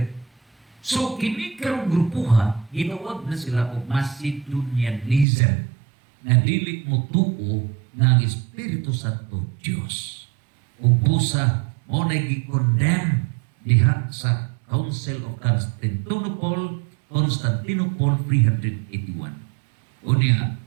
So, kini karong grupuha, ginawag na sila o Macedonianism na dili mo tuo nga ang Espiritu Santo Diyos. O busa, mo na gi-condemn diha sa Council of Constantinople, 381. Unya,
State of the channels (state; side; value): drops out; left; at 5.2 s